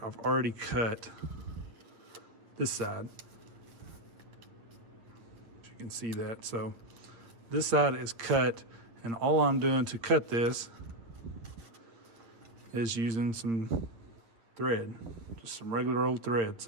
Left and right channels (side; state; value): left; late; 8.8 ms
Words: I've already cut this side. You can see that. So this side is cut, and all I'm doing to cut this is using some thread, just some regular old thread.